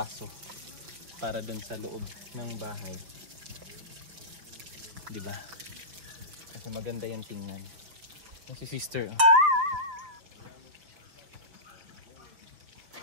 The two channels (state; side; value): late; left; 5.8 ms